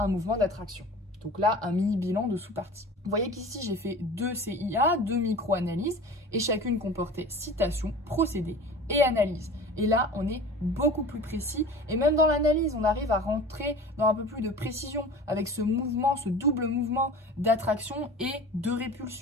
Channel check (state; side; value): normal; both; correlation 0.39